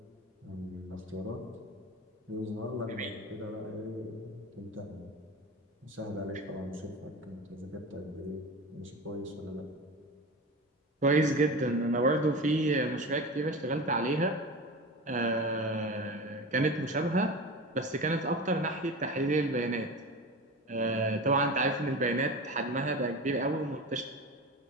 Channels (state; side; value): normal; both; correlation 0.29